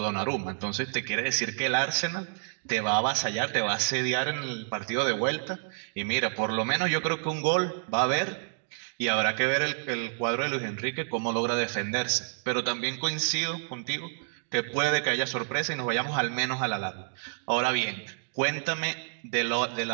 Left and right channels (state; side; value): silent; left; digital silence